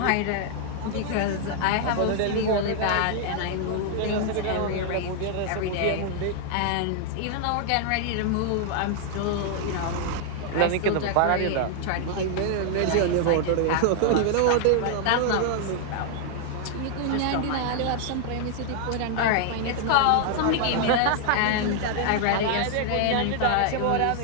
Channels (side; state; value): both; different; correlation 0.00